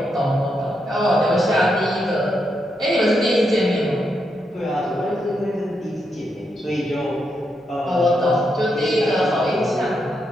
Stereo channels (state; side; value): normal; both; correlation 0.82